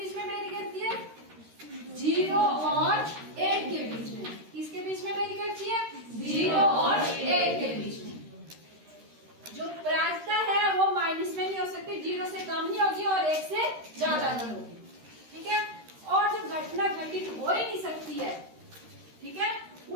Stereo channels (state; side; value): late; left; 13 ms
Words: में वेरी करती है? 0 और 1 के बीच में। किसके बीच में वेरी करती है? 0 और 1 के बीच में। जो प्रायिकता है वो माइनस में नहीं हो सकती, 0 से कम नहीं होगी और 1 से ज्यादा नहीं होगी। ठीक है, और जो घटना घटित हो ही नहीं सकती है, ठीक है,